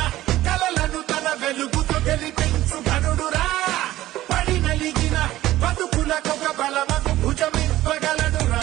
కలలను తన వెలుగుతో గెలిపించు ఘనుడురా పడి నలిగిన బతుకులకొక బలమకు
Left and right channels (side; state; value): left; quieter; 15.2 dB